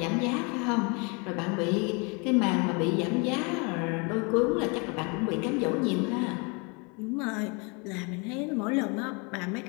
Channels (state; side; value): quieter; right; 31.9 dB